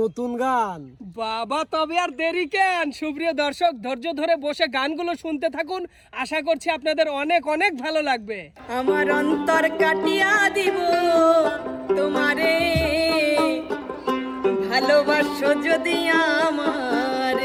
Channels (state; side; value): identical; both; correlation 1.00